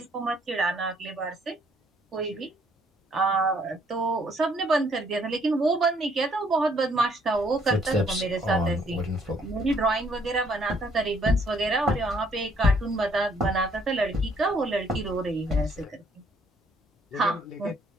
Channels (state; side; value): normal; both; correlation 0.66